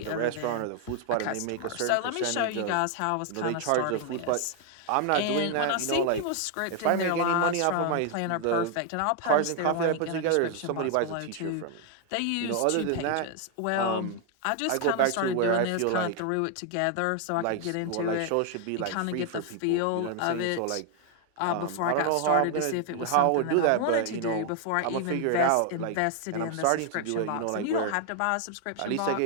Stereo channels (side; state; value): both; different; correlation 0.00